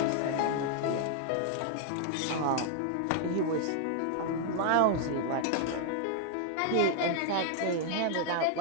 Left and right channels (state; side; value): different; both; correlation 0.00